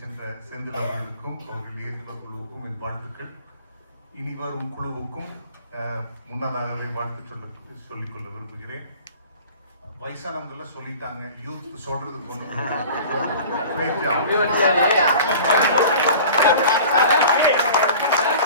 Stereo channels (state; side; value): inverted; both; correlation -0.41